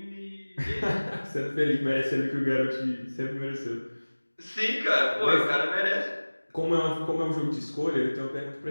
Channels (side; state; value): both; inverted; correlation -1.00